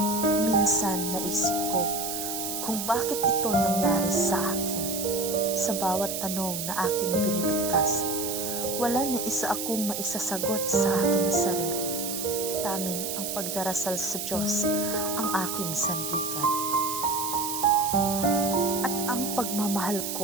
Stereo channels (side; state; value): right; noise; hiss, 4 dB below the sound